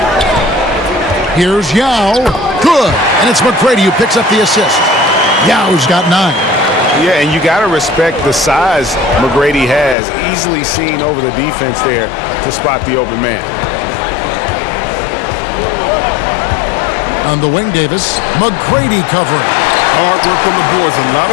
Here's Yao. Good. And it's McGrady who picks up the assist. Yao's got 9. Yeah, and you got to respect the size McGrady has. Easily seen over the defense there to spot the open man. On the wing, Davis. McGrady covering. Hard work on the boards. A lot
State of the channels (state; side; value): drops out; right; at 10.0 s